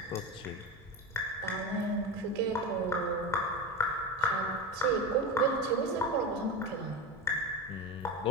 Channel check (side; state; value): both; normal; correlation 0.20